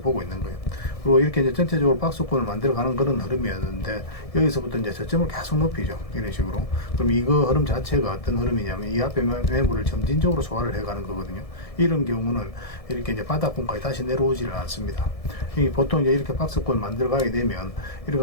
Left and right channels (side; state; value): right; late; 1.7 ms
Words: 보고 있는 거예요. 그리고 이렇게 이제 전체적으로 박스권을 만들어가는 그런 흐름이었는데 여기서부터 이제 저점을 계속 높이죠. 이런 식으로. 그럼 이거 흐름 자체가 어떤 흐름이냐면 이 앞에 매물을 점진적으로 소화를 해가는 거거든요. 이런 경우는 이렇게 이제 바닥권까지 다시 내려오지를 않습니다. 보통 이제 이렇게 박스권 만들어가게 되면 이렇게